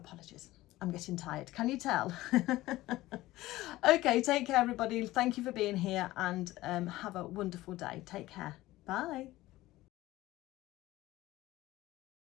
I'm getting tired. Can you tell? Okay, take care, everybody. Thank you for being here, and have a wonderful day. Take care. Bye.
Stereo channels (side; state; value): right; quieter; 17.2 dB